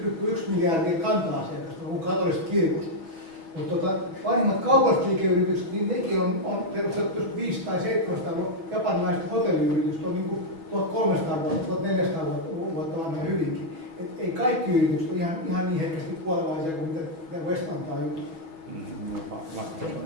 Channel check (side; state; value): left; late; 6.2 ms